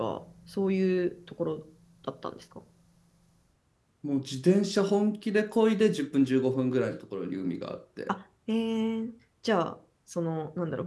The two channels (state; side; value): identical; both; correlation 1.00